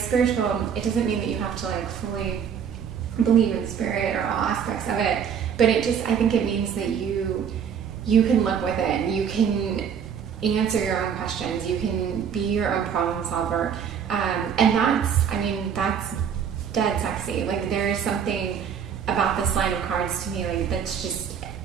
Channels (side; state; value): left; quieter; 7.7 dB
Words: it doesn't mean that you have to like fully believe in spirit or all aspects of it, but I think it means that you can look within, you can answer your own questions, you can be your own problem solver, and that's dead sexy. Like, there is something about this line of cards to me, like, that's just,